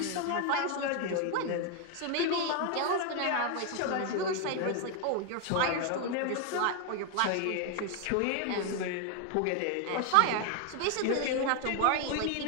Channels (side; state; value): both; different; correlation 0.01